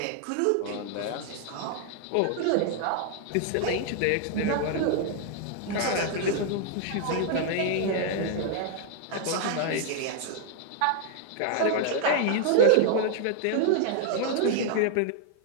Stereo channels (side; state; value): both; different; correlation 0.00